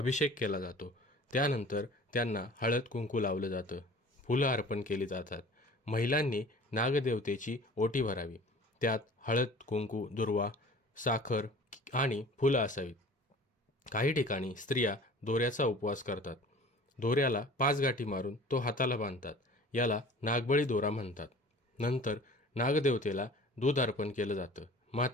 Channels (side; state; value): both; normal; correlation 0.45